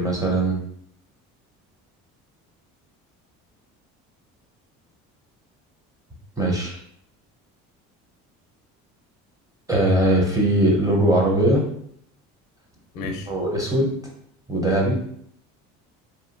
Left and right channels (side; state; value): both; normal; correlation 0.36